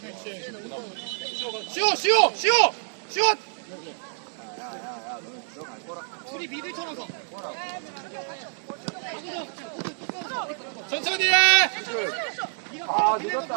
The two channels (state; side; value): silent; left; 60 dB below the other